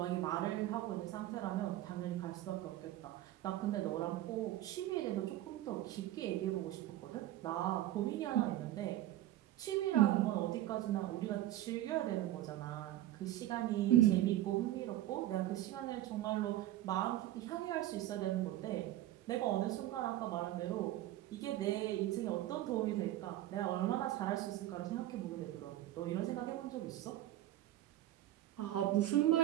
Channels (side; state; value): left; quieter; 14.3 dB